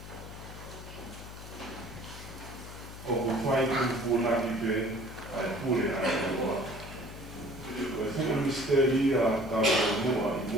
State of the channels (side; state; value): left; noise; hum, 13 dB below the sound